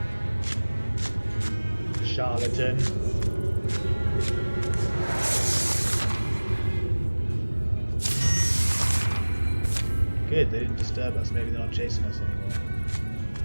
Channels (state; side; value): inverted; both; correlation -1.00